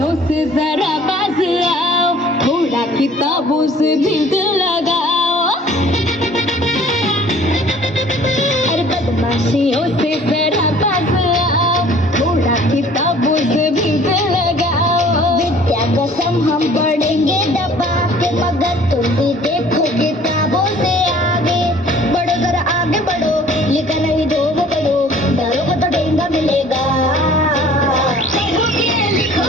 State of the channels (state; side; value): normal; both; correlation 0.52